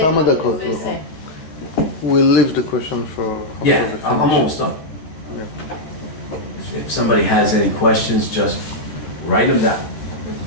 דקות. We'll leave the question for... Yeah, I'm almost done. Yeah. If somebody has any questions, just write them down.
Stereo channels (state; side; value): late; right; 13 ms